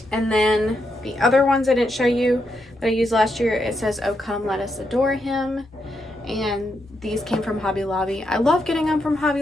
And then the other ones I didn't show you that I used last year, it says, "Oh, come, let us adore him." And these came from Hobby Lobby. I love getting them from Hobby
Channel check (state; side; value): normal; both; correlation 0.81